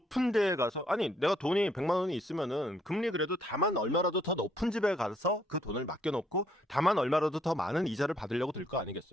데에 가서 아니 내가 돈이 100만 원이 있으면은 금리 그래도 다만 얼마라도 더 높은 집에 가서 그 돈을 맡겨놓고 다만 얼마라도 더 많은 이자를 받으려고 들 거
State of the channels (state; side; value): normal; both; correlation 0.69